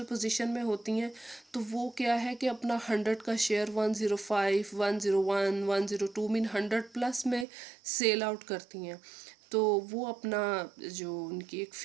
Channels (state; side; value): drops out; left; at 7.5 s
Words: पोजीशन में होती हैं तो वो क्या है कि अपना 100 का शेयर 105, 101, 102 मीन 100 प्लस में सेल आउट करती हैं। तो वो अपना जो उनकी एक